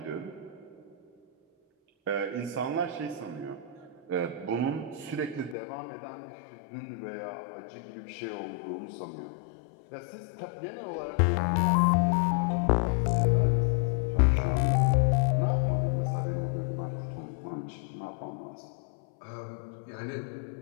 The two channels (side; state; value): right; drops out; at 5.6 s